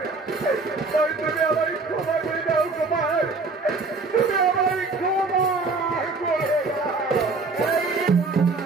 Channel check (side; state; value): left; quieter; 3.9 dB